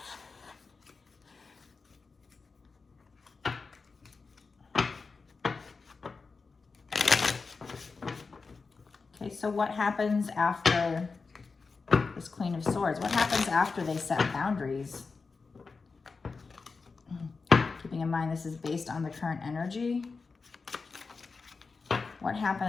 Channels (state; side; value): quieter; right; 4.5 dB